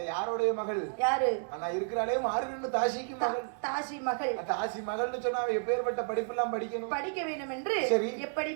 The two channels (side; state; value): left; silent; digital silence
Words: யாருடைய மகள்? யாரு? நான் இருக்கிறாளே மாறுகண்ணு தாசிக்கு மகள். தாசி மகள். தாசி மகள்னு சொன்னா எப்பேற்பட்ட படிப்பு எல்லாம் படிக்க வேண்டும் என்று எப்படி